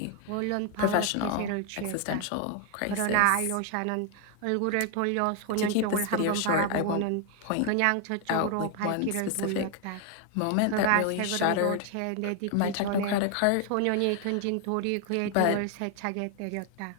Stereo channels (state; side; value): different; both; correlation 0.00